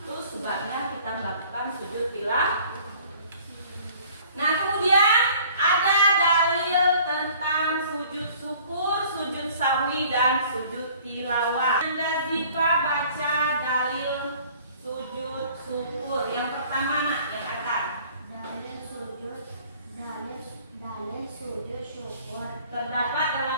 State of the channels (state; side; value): inverted; both; correlation -0.53